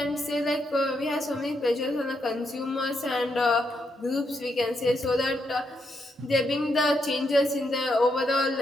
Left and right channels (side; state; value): both; normal; correlation 0.79